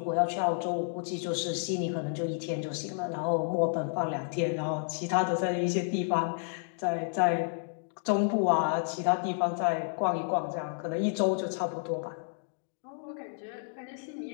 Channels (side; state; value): right; silent; digital silence